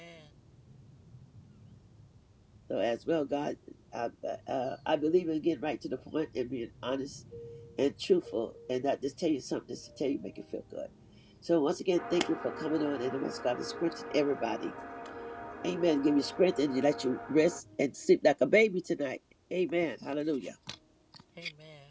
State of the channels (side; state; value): both; identical; correlation 1.00